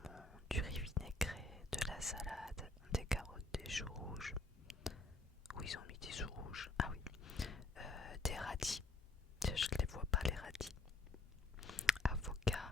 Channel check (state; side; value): quieter; right; 3.0 dB